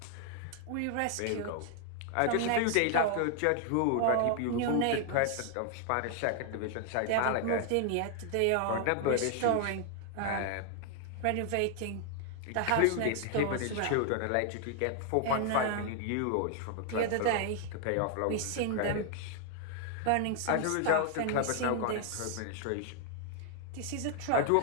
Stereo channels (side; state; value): both; different; correlation 0.00